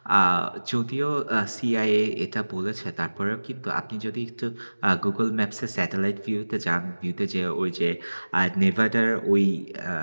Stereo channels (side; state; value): both; inverted; correlation -1.00